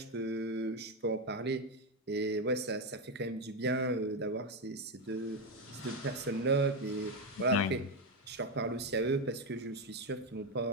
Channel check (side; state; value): both; normal; correlation 0.08